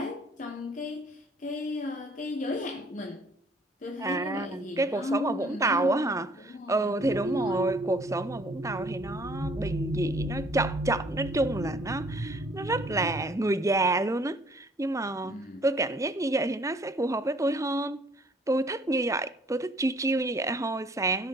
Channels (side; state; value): both; normal; correlation 0.58